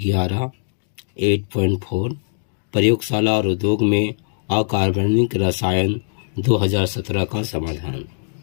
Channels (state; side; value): silent; right; digital silence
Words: 8.4 प्रयोगशाला और उद्योग में अकार्बनिक रसायन 2017 का समाधान,